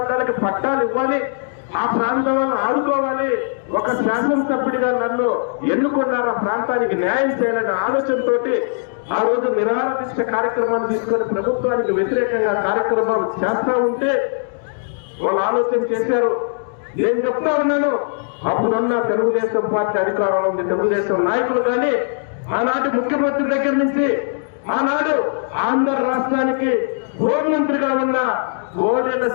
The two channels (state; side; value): silent; right; digital silence